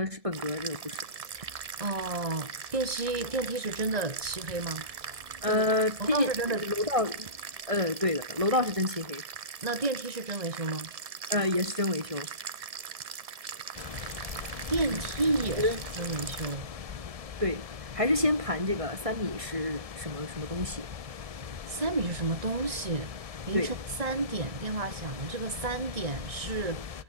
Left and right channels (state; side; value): late; left; 1.7 ms